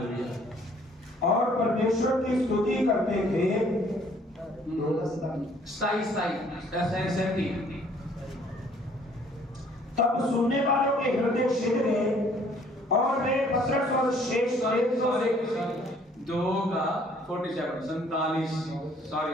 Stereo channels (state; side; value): normal; both; correlation 0.59